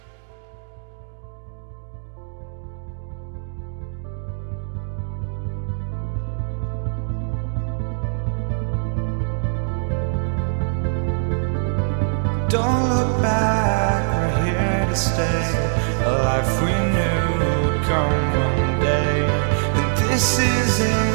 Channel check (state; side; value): silent; left; digital silence